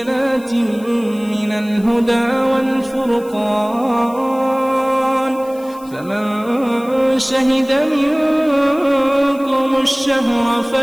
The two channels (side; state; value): left; noise; hiss, 24 dB below the sound